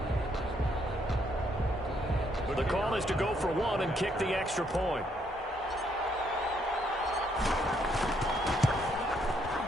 The call is to go for one and kick the extra point.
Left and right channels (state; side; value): normal; both; correlation 0.72